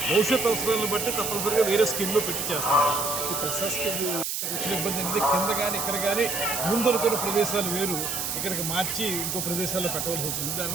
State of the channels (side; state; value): right; noise; hiss, 2 dB below the sound